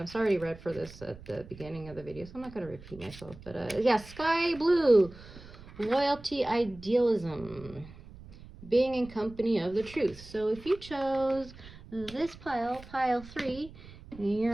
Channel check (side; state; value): right; noise; rumble, 18 dB below the sound